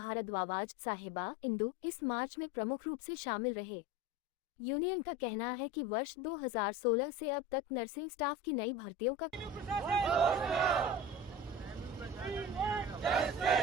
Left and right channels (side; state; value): both; normal; correlation 0.33